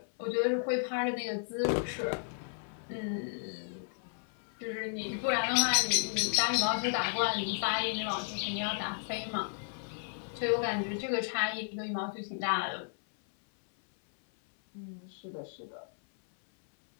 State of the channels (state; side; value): silent; right; 55 dB below the other